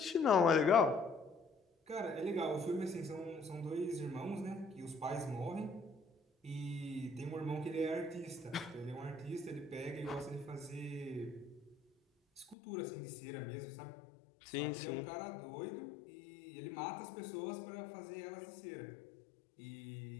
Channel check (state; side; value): drops out; right; at 12.6 s